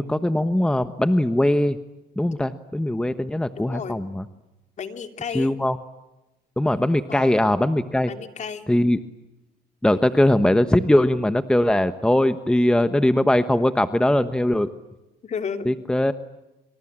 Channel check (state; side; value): normal; both; correlation 0.97